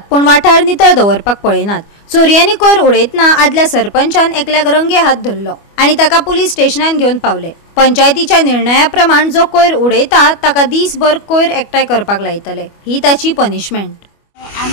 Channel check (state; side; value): late; right; 25 ms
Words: पण वाठार नितळ दवरपाक पळयनात। चोरयांनी कोयर उडयतना आदल्या सरपंचान एकल्याक रंगे हात धरलो आनी ताका पुलीस स्टेशनान घेवन पावले। पंचायतीच्या निर्णया प्रमाण जो कोयर उडयता ताका दीसभर कोयर एकठांय करपाक लायतले, ही ताची पनिशमेंट।